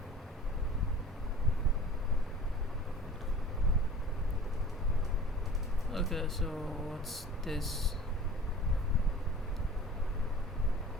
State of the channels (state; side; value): normal; both; correlation 0.42